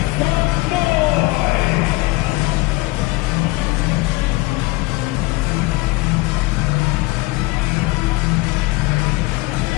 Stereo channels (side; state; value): right; quieter; 21.6 dB